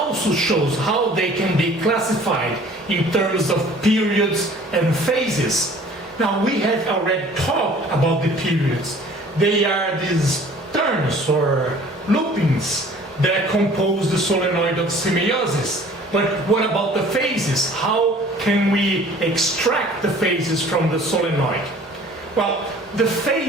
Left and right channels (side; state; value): both; normal; correlation 0.50